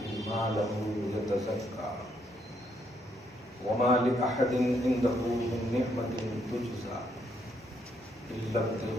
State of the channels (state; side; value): normal; both; correlation 0.74